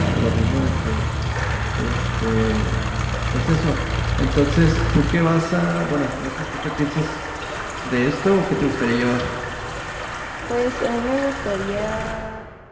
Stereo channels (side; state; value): both; identical; correlation 1.00